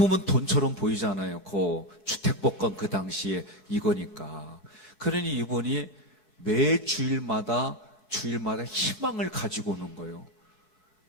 돈처럼 보이잖아요. 그 주택복권 그 당시에 이거니까. 그러니 이분이 매 주일마다 희망을 가지고 오는 거예요.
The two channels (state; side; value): late; right; 10 ms